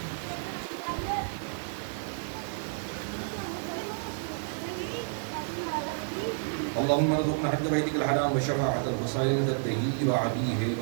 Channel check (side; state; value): left; silent; 57 dB below the other